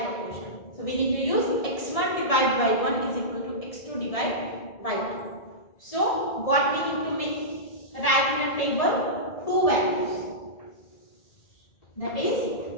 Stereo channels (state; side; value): late; right; 1.6 ms